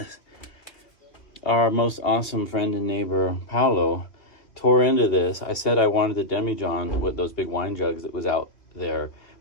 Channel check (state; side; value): late; right; 2.6 ms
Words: Our most awesome friend and neighbor, Paolo, tore into this. I said I wanted the demijohn with those big wine jugs that was out there.